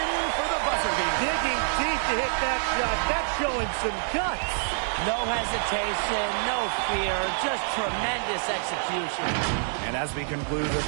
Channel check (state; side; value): silent; left; digital silence